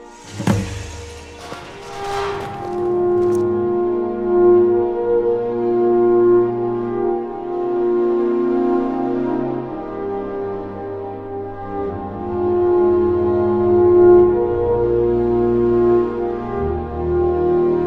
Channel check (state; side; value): identical; both; correlation 1.00